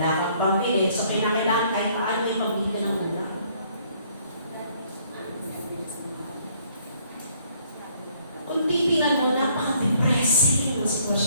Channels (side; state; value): both; inverted; correlation -0.64